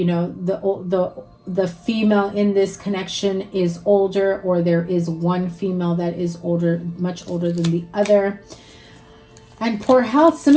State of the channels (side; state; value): both; identical; correlation 1.00